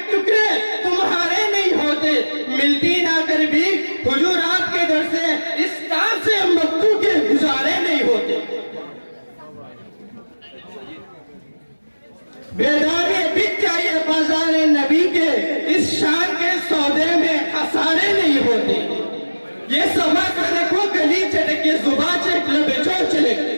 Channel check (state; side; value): inverted; both; correlation -1.00